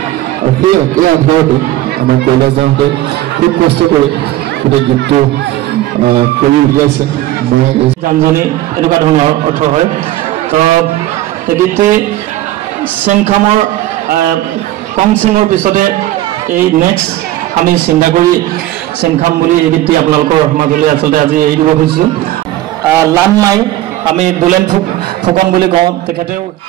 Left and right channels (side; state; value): left; quieter; 15.1 dB